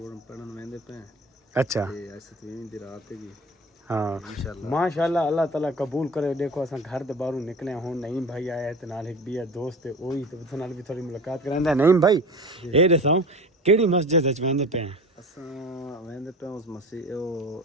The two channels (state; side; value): normal; both; correlation 0.36